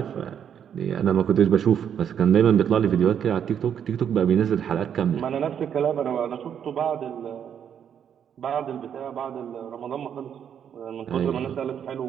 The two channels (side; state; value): left; quieter; 8.6 dB